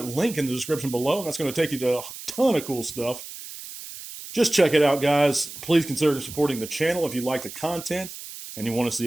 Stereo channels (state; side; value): noise; right; hiss, 12 dB below the sound